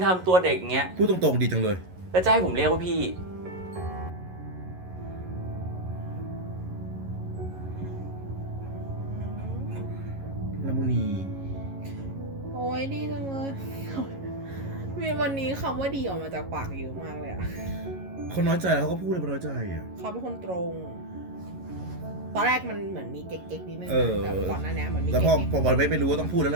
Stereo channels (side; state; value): left; late; 11 ms